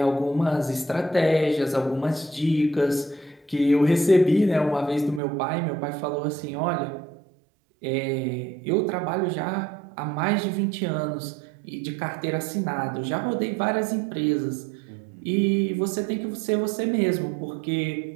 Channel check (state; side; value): drops out; left; at 5.2 s